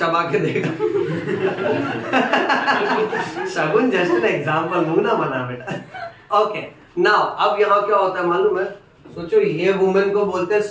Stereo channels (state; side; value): identical; both; correlation 1.00